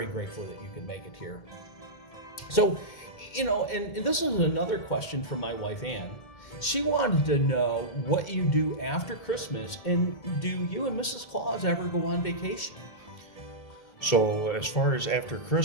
grateful that you could make it here. So, and this is another question from my wife, Ann. She wanted to know what you do after Christmas, and do you and Mrs. Claus ever go on vacation? So as far as after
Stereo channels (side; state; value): right; late; 2.1 ms